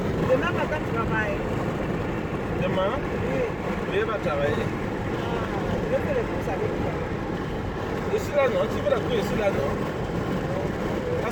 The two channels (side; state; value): both; identical; correlation 1.00